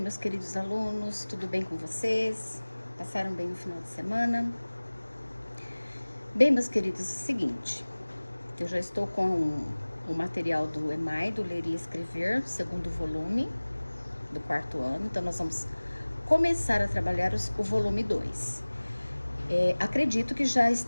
queridos alunos, tudo bem com vocês? Passaram bem no final de semana? Bem, meus queridos, é o seguinte, eu já estou com o material do EMAI, do Ler e Escrever, segundo volume, do quarto ano, então nós vamos começar a trabalhar o volume 2. Acredito que já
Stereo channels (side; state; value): both; inverted; correlation -1.00